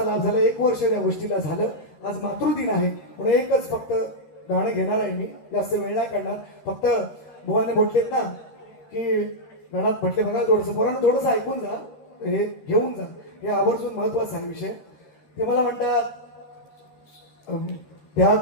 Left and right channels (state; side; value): late; right; 13 ms